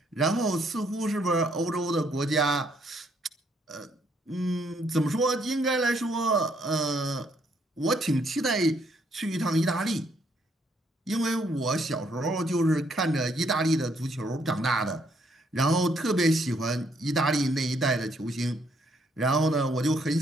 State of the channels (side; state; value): both; normal; correlation 0.70